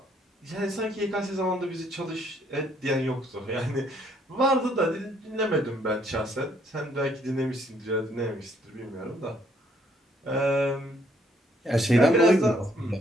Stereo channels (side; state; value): both; normal; correlation 0.67